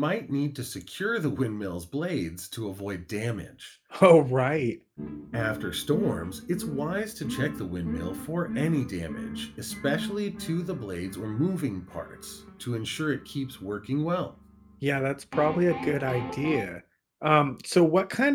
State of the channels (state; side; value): identical; both; correlation 1.00